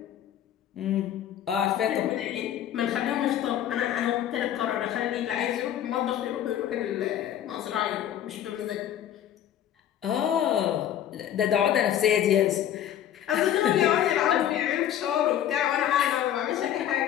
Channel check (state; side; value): quieter; right; 10.8 dB